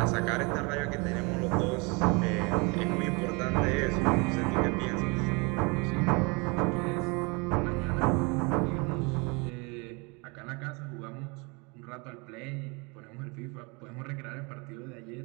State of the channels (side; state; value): left; quieter; 29.6 dB